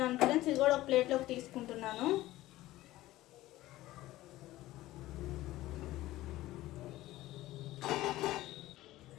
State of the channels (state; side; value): quieter; right; 16.5 dB